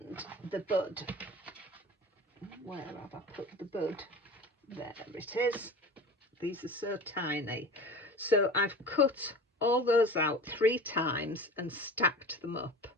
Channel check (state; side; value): normal; both; correlation 0.36